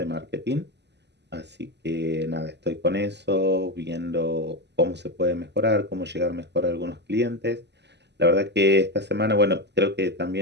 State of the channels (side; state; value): left; late; 0.50 ms